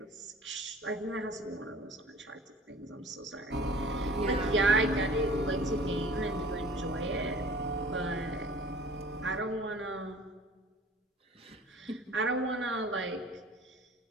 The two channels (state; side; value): normal; both; correlation 0.47